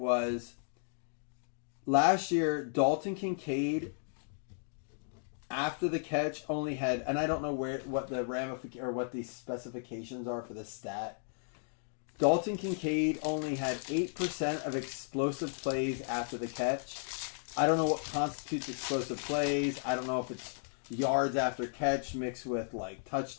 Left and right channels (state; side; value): silent; right; digital silence